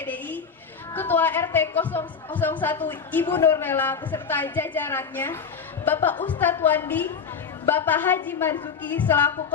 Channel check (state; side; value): quieter; right; 6.1 dB